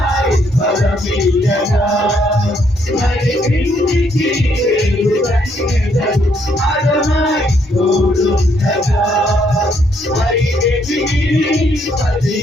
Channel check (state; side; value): normal; both; correlation 0.71